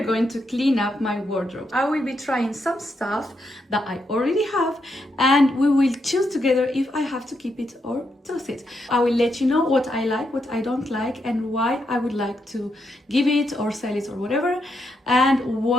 going to clean up my wardrobe. I will be trying some stuff that I already have, and we will choose together if I have to keep it or toss it. I will let you know what I like, what I don't like, and why I would like to give it or sell it or whatever, and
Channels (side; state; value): both; normal; correlation 0.81